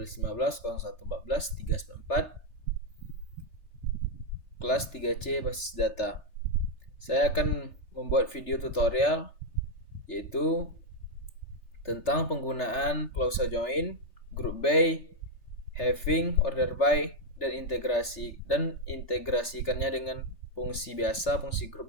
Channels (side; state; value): right; late; 3.3 ms